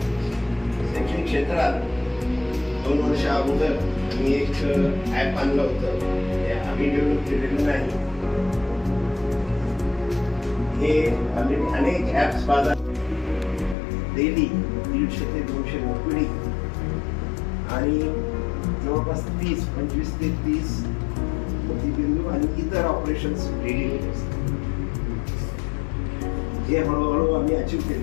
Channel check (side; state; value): right; drops out; at 13.8 s